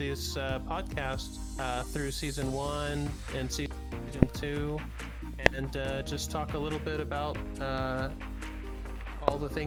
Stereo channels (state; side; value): identical; both; correlation 1.00